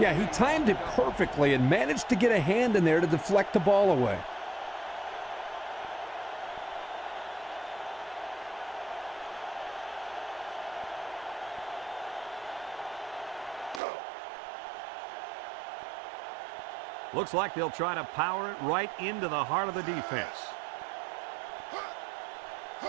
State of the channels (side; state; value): left; drops out; at 13.8 s